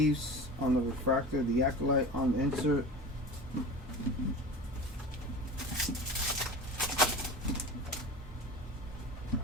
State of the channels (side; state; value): both; normal; correlation 0.33